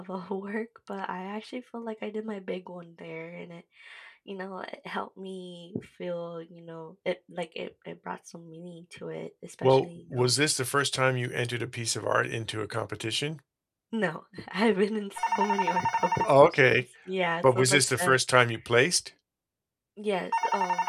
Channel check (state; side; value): identical; both; correlation 1.00